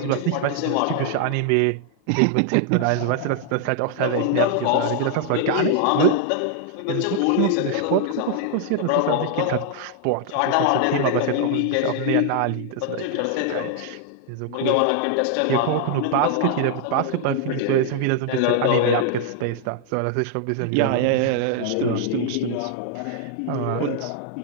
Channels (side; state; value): both; different; correlation 0.00